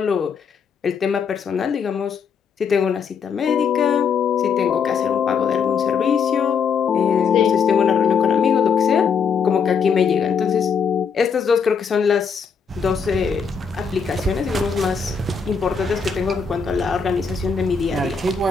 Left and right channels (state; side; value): quieter; right; 6.1 dB